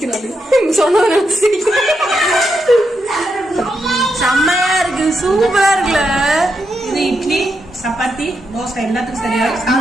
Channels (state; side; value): normal; both; correlation 0.83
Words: சொன்ன செம்மையா இருக்கு, சூப்பரா இருக்குல்ல. இது இட்லி, சப்பாத்தி, தோசை எல்லாத்துக்கும்